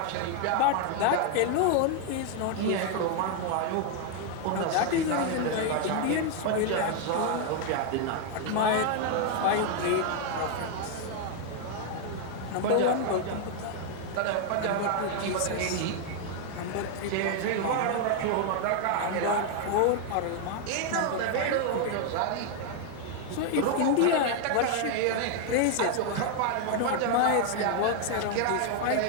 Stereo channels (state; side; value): different; both; correlation 0.00